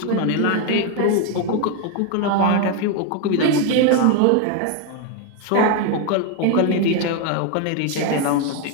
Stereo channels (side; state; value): both; different; correlation 0.01